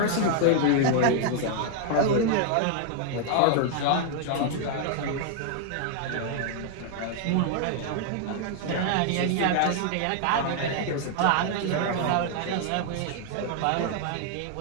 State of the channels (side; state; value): both; different; correlation 0.00